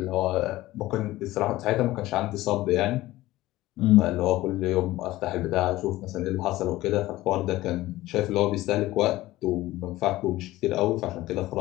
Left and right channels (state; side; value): quieter; right; 17.1 dB